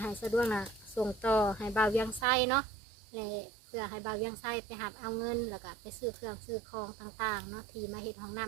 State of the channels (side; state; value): left; drops out; at 2.2 s